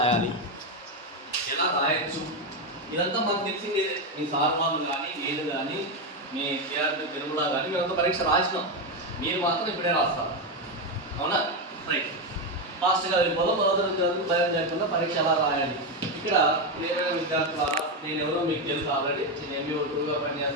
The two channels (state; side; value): normal; both; correlation 0.09